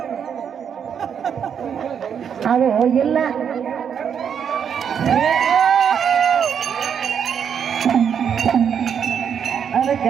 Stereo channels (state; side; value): quieter; left; 7.8 dB